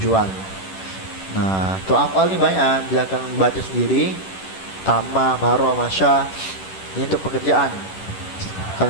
Nah, tuh afal ini banyak, bila kalian baca sendiri. Tama, maro, masya, ini untuk pekerjaan.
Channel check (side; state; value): right; late; 10 ms